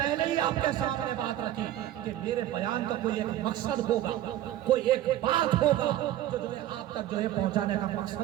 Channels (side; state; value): left; quieter; 13.0 dB